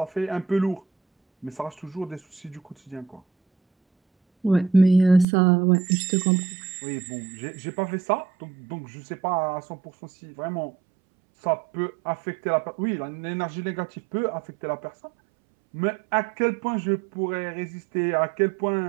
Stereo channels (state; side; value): drops out; left; at 5.2 s